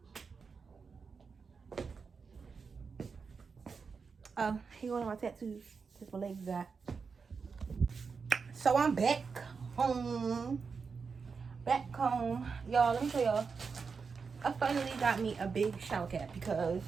Oh, here one of my tattoos. That's my legs got. So I'm back home. Back home. Y'all, let me show y'all. I finally got me a big shower cap because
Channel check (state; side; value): quieter; left; 5.3 dB